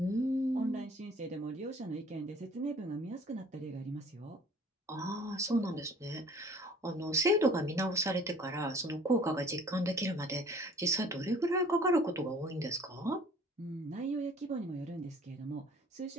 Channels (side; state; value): both; normal; correlation 0.52